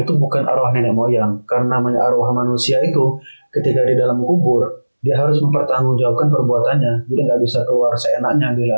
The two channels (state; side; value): inverted; both; correlation -1.00